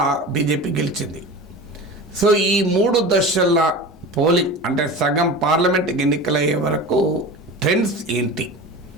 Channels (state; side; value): normal; both; correlation 0.32